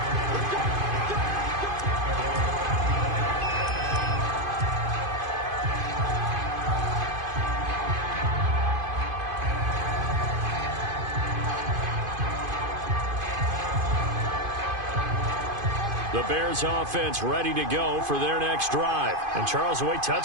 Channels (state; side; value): late; left; 2.5 ms